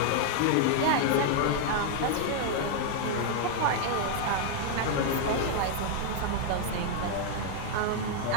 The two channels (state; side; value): different; both; correlation 0.00